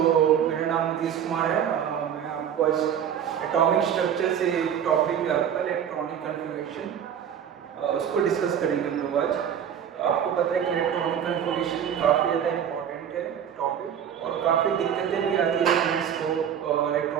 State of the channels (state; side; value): quieter; left; 8.9 dB